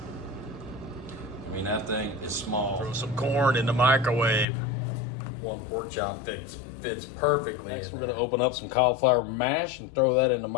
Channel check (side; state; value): right; drops out; at 4.5 s